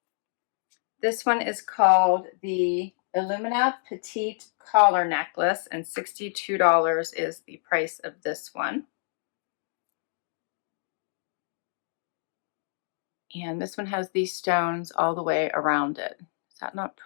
This one is called the Illumina Petite Collar Necklace, and $62 is the price of this one. And this one has these stones all the way around it. Is that not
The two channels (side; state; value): right; silent; digital silence